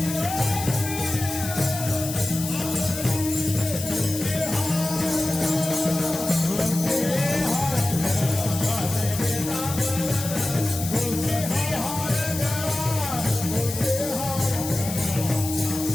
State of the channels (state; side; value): noise; left; hiss, 7 dB below the sound